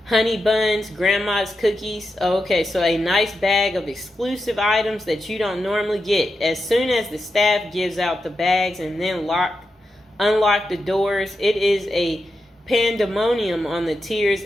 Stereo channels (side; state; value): both; normal; correlation 0.88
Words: Honey buns, grandma's cookies. Okay, so a nice bag of exclusive items that you don't normally get. As soon as the staff gives out the bags and then unlock the doors, it is a pandemonium on the tiers